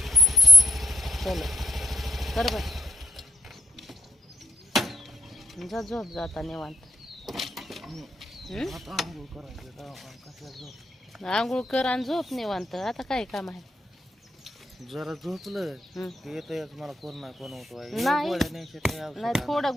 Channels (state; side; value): normal; both; correlation 0.82